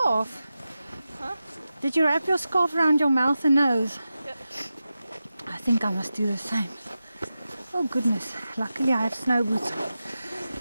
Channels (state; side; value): inverted; both; correlation -0.92